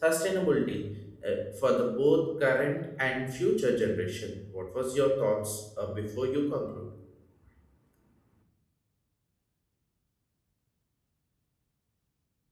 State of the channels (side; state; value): both; identical; correlation 1.00